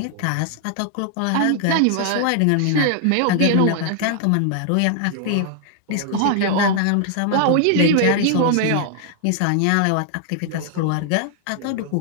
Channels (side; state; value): both; different; correlation 0.00